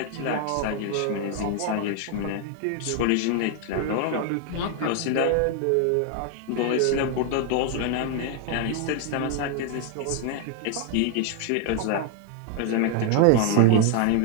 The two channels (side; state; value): both; different; correlation 0.00